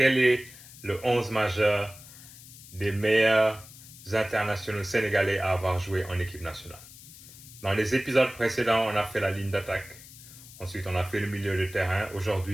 est le 11 majeur des meilleurs internationaux sénégalais à avoir joué en équipe nationale? Dans les épisodes précédents, on a fait la ligne d'attaque. Ensuite, on a fait le milieu de terrain.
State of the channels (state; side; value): noise; left; hiss, 18 dB below the sound